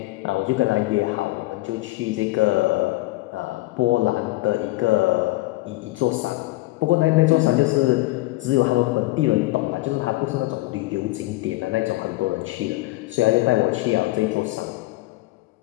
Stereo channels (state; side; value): quieter; right; 19.6 dB